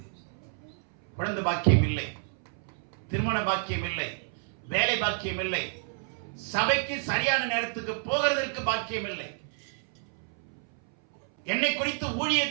குழந்தை பாக்கியம் இல்லை, திருமண பாக்கியம் இல்லை, வேலை பாக்கியம் இல்லை, சபைக்கு சரியான நேரத்துக்கு போகிறதற்கு பாக்கியம் இல்லை, என்னை குறித்து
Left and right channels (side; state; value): left; silent; 58 dB below the other